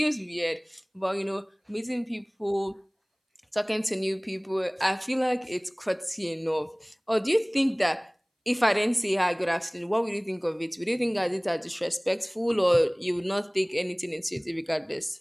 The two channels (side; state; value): both; identical; correlation 1.00